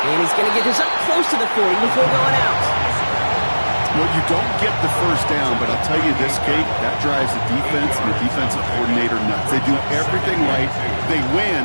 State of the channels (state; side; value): inverted; both; correlation -1.00